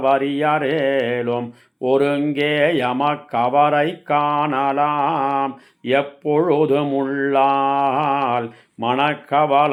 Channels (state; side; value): identical; both; correlation 1.00